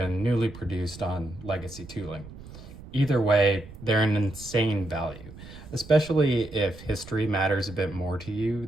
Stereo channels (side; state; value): right; noise; rumble, 16 dB below the sound